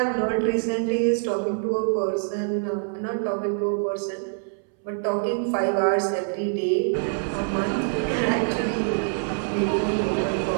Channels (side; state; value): left; silent; 62 dB below the other